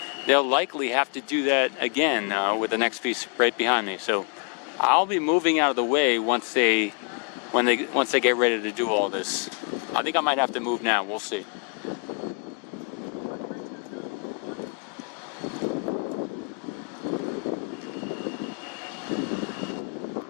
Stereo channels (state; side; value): quieter; right; 37.8 dB